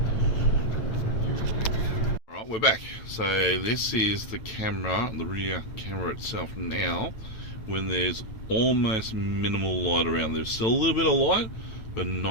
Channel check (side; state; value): right; late; 9.0 ms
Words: Alright, we're back. So this is the camera, the rear camera itself now, when there's almost minimal light around. There's still a little bit of light, but